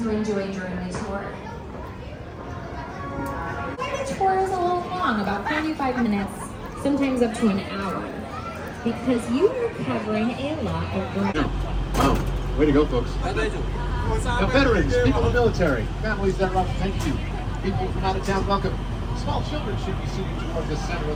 enjoy during the tour. The tour is a little long, about 45 minutes, sometimes up to an hour, because you are covering a lot of ground. Wow, way to go, folks. Now, veterans, people in the military, families that are up, thank you. People from out of town, welcome. Small children should be seated toward the center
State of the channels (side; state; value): both; identical; correlation 1.00